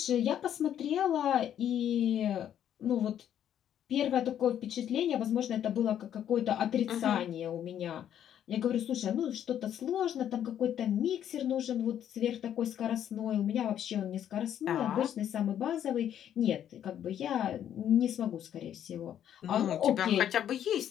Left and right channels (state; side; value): quieter; right; 10.1 dB